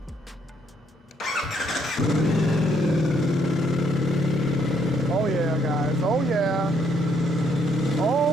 Oh yeah, guys, oh yeah.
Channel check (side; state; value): both; normal; correlation 0.70